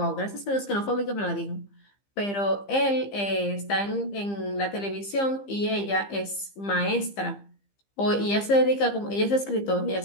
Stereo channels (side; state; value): right; late; 15 ms